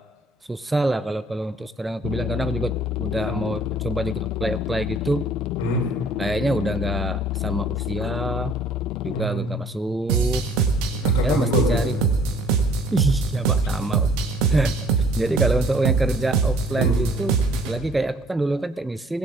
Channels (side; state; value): both; normal; correlation 0.56